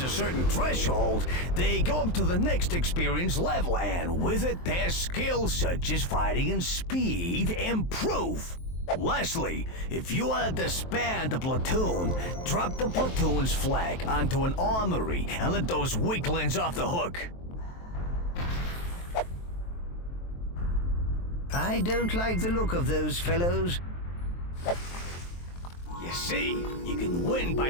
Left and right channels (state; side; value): late; right; 23 ms